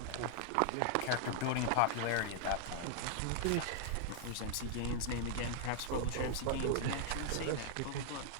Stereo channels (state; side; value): different; both; correlation -0.01